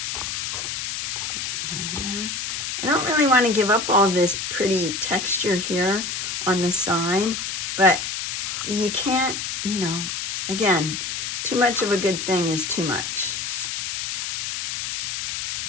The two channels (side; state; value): left; noise; hiss, 3 dB below the sound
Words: I don't really want to give up all this pretty texture here on the side, but you can't, you know, again, too much of a good thing is too much.